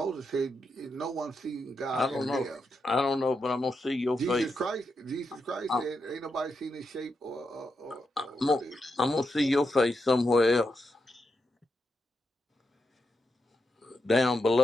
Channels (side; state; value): both; normal; correlation 0.85